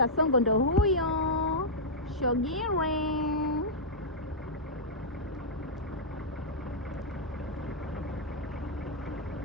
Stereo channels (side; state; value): both; normal; correlation -0.08